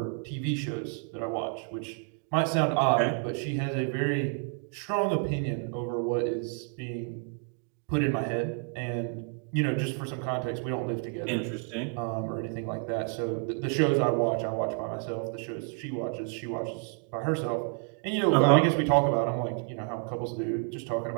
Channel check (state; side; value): quieter; left; 38.9 dB